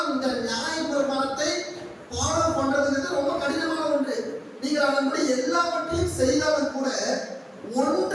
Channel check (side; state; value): both; identical; correlation 1.00